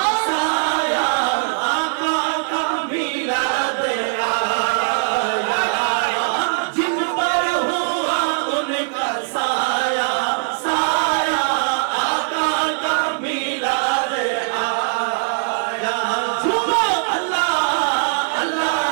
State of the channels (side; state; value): left; silent; digital silence